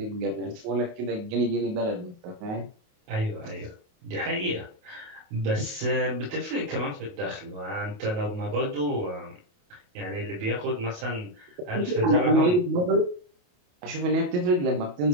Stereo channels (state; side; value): late; left; 28 ms